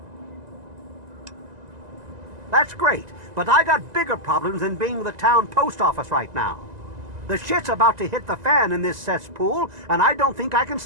That's great, but I got bigger problems than being the town post office right now. The shit's about to hit the fan in this cesspool, and I don't think I can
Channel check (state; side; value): late; left; 2.0 ms